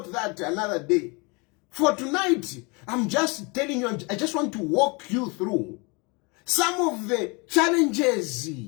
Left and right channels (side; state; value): right; quieter; 29.3 dB